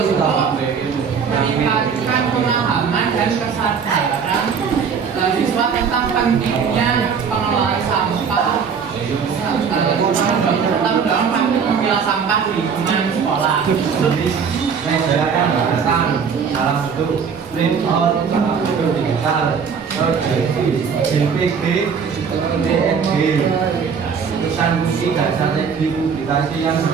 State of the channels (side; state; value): left; quieter; 6.3 dB